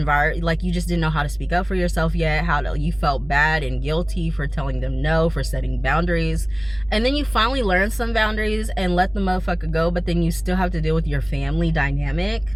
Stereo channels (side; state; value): right; noise; hum, 21 dB below the sound